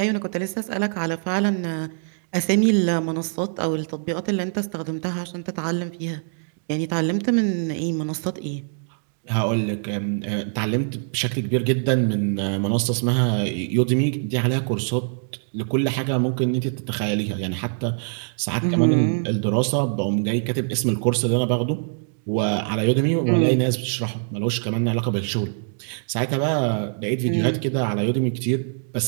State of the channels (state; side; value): silent; left; digital silence